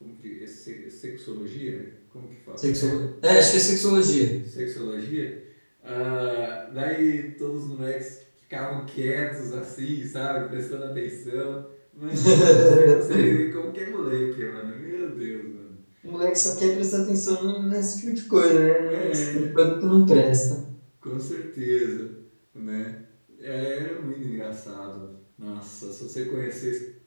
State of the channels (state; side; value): inverted; both; correlation -1.00